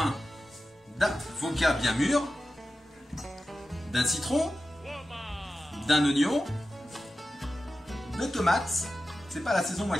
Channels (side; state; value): both; normal; correlation 0.93